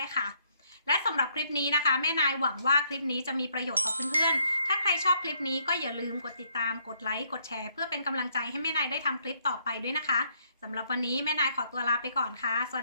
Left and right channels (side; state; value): both; inverted; correlation -0.70